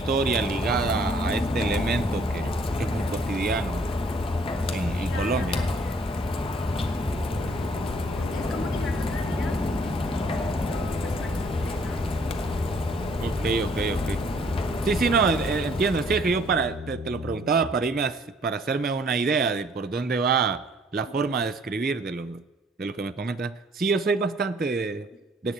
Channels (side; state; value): both; normal; correlation 0.61